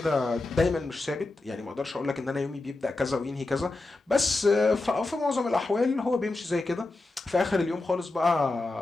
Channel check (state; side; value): quieter; right; 3.1 dB